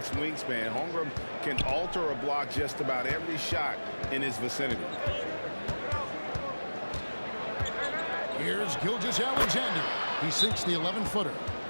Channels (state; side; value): inverted; both; correlation -1.00